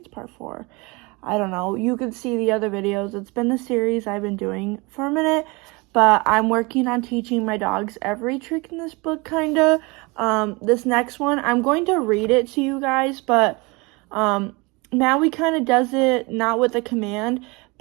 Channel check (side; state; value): left; quieter; 26.6 dB